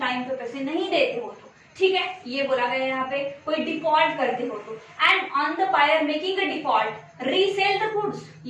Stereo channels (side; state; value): both; identical; correlation 1.00